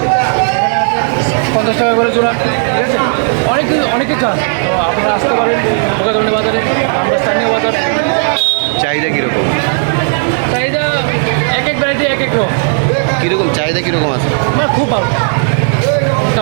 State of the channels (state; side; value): silent; left; 64 dB below the other